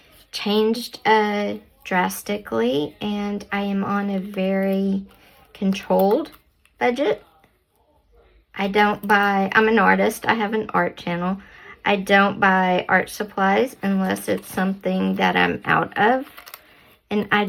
changed drastically, and I am on a very controlled budget. I'm an artist. I have an art channel. I don't buy art supplies unless it's something that I'm out of. And I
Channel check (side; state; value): both; identical; correlation 1.00